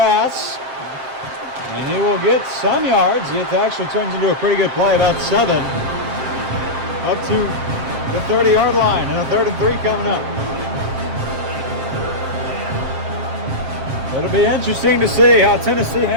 And he will get some yards. It actually turns into a pretty good play, about 7. Up to the 30-yard line, and a 3rd and 3 coming up. It'll be interesting to see how Tennessee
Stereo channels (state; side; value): late; left; 7.6 ms